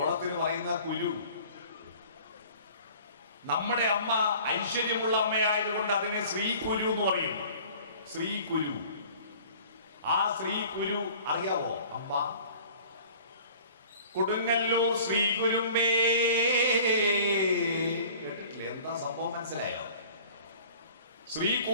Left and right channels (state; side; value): inverted; both; correlation -0.48